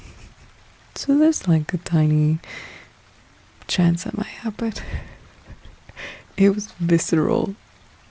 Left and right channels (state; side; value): identical; both; correlation 1.00